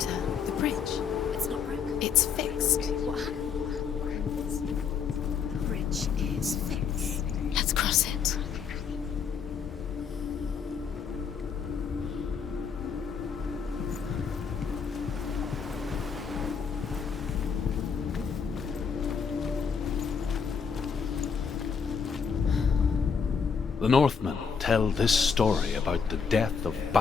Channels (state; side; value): quieter; right; 6.3 dB